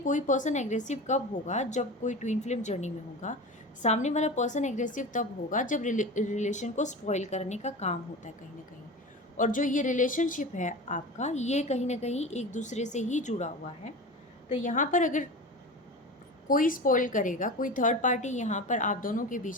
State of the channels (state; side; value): normal; both; correlation 0.30